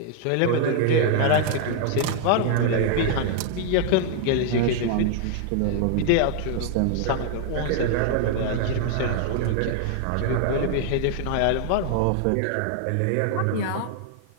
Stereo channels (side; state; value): both; different; correlation 0.00